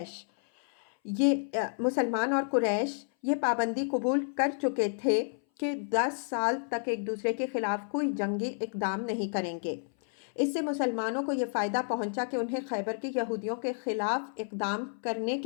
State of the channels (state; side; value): silent; right; 57 dB below the other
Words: قریش یہ پابندی قبول کر چکے تھے کہ 10 سال تک ایک دوسرے کے خلاف کوئی جنگی اقدام نہیں کریں گے۔ اس سے مسلمانوں کو یہ فائدہ پہنچا کہ انہیں خیبر کے یہودیوں کے خلاف اقدام کرنے